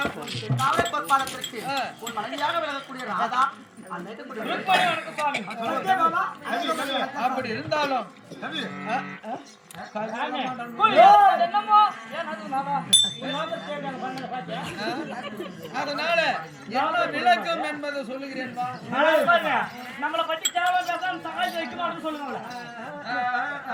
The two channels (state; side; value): identical; both; correlation 1.00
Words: காவலை பொற்பாலத்திற்கு உன் மனைவியாக விளங்கக்கூடிய ராதா அப்படி இருந்தாலும் அதனால என்ன விளக்கம் என்பதை சொல்லுகிறேன். நம்மளை பற்றி தேவை சகாயம் வைக்கணும் சொல்லுங்க.